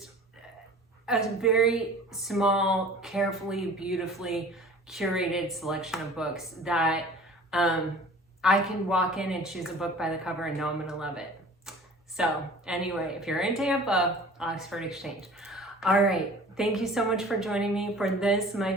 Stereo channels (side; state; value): both; normal; correlation 0.45